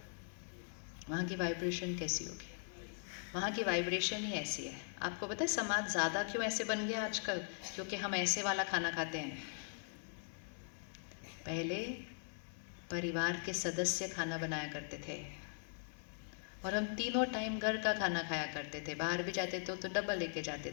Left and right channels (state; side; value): silent; right; 51 dB below the other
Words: वहाँ की वाइब्रेशन कैसी होगी? वहाँ की वाइब्रेशन ही ऐसी है। आपको पता है समाज ज़्यादा क्यों ऐसे बन गया आजकल? क्योंकि हम ऐसे वाला खाना खाते हैं। पहले परिवार के सदस्य खाना बनाया करते थे और हम तीनों टाइम घर का खाना खाया करते थे। बाहर भी जाते थे तो डब्बा लेके